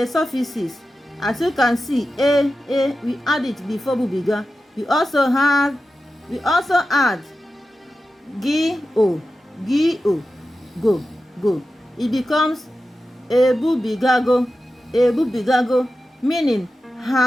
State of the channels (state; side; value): normal; both; correlation 0.93